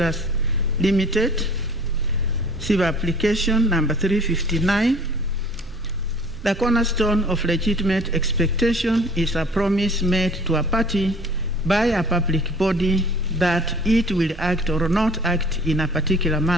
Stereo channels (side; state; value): both; normal; correlation 0.49